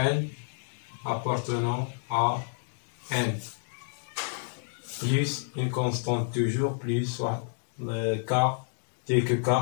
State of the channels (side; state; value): right; silent; digital silence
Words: appartenant à n, plus une constante toujours, plus soit le k, tel que k